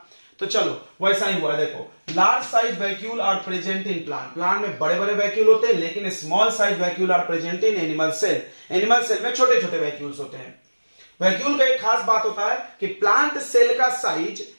तो चलो वैसा ही हुआ। देखो large size vacuole are present in plant, plant में बड़े बड़े वैक्यूल होते हैं, लेकिन small size vacuole are present in animal cell, animal cell में छोटे छोटे वैक्यूल्स होते हैं। वैक्यूल का एक खास बात होता है कि प्लांट सेल का साइज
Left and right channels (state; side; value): inverted; both; correlation -1.00